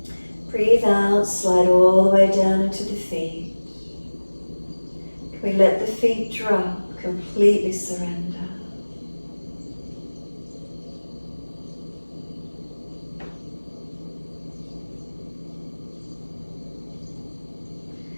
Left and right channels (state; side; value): inverted; both; correlation -1.00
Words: Breathe out, slide all the way down into the feet. Can we let the feet drop Completely surrender.